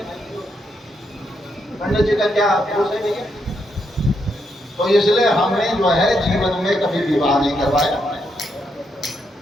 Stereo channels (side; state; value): both; normal; correlation 0.79